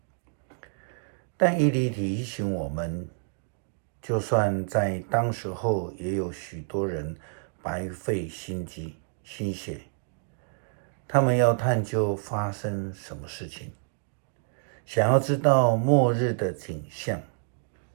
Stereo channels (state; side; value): silent; left; 59 dB below the other